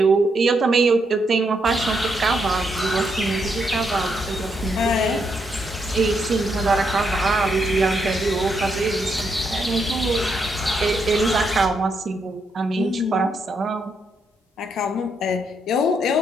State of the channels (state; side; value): normal; both; correlation 0.78